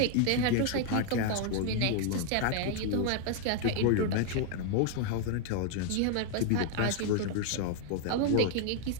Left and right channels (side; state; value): both; different; correlation 0.00